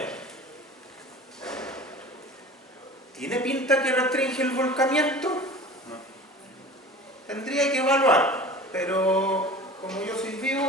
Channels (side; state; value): both; normal; correlation 0.39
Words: ¿tiene pinta que restringe el volcamiento? Tendría que evaluar, pero como yo soy